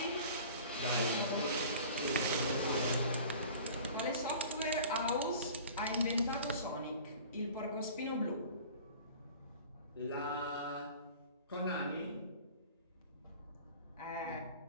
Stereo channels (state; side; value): inverted; both; correlation -0.43